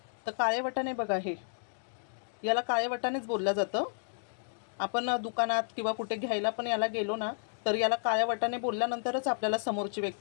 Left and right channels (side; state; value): right; silent; digital silence